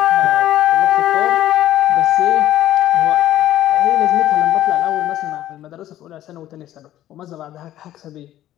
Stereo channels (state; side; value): quieter; right; 13.3 dB